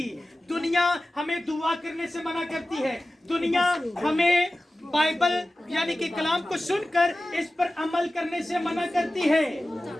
दुनिया हमें दुआ करने से मना करती है, दुनिया हमें बाइबल यानी कि कलाम को सुनकर इस पर अमल करने से मना करती है।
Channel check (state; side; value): normal; both; correlation 0.96